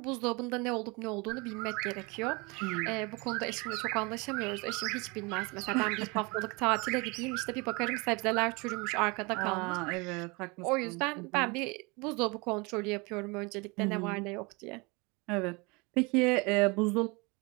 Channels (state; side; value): quieter; left; 27.7 dB